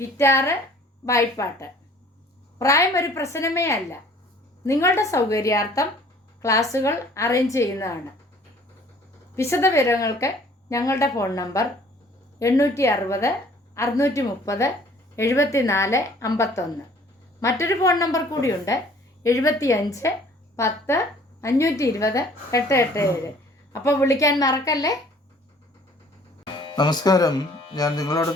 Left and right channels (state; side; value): normal; both; correlation 0.54